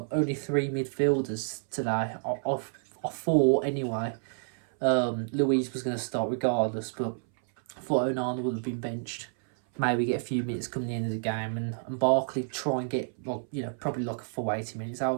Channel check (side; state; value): left; silent; 58 dB below the other